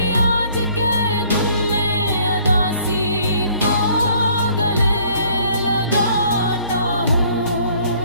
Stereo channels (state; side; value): inverted; both; correlation -0.60